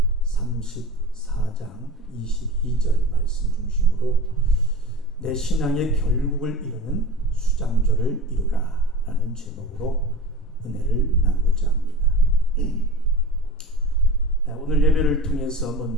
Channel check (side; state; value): both; normal; correlation 0.32